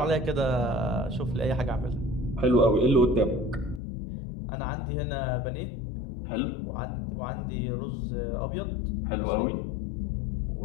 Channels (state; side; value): drops out; right; at 3.8 s